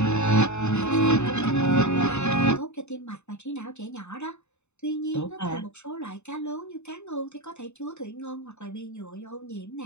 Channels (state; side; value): late; right; 0.82 ms